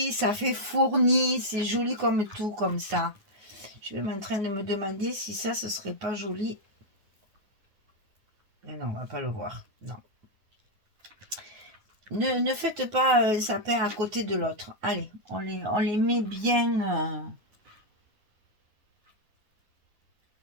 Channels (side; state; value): left; late; 9.7 ms